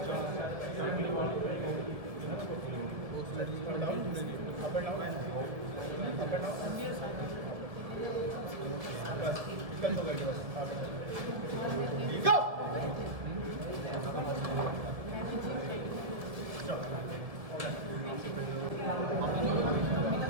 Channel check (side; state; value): left; late; 1.7 ms